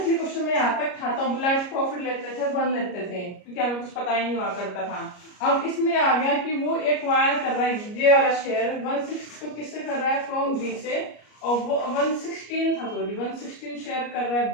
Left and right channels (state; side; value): late; right; 33 ms